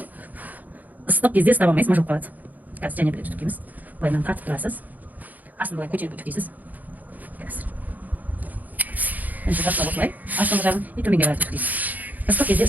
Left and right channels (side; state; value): left; late; 0.081 ms